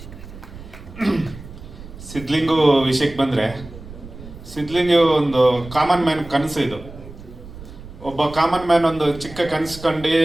ಸಿದ್ಲಿಂಗು ವಿಷಯಕ್ಕೆ ಬಂದರೆ, ಸಿದ್ಲಿಂಗು ಒಂದು ಕಾಮನ್ ಮ್ಯಾನ್ ಕನಸು. ಇದು ಒಬ್ಬ ಕಾಮನ್ ಮ್ಯಾನ್ ಒಂದು ಚಿಕ್ಕ ಕನಸು ಕಂಡು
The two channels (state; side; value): noise; right; rumble, 15 dB below the sound